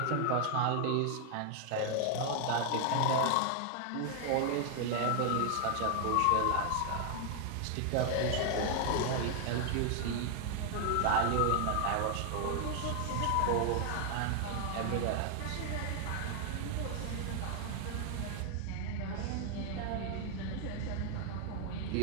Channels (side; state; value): both; different; correlation 0.00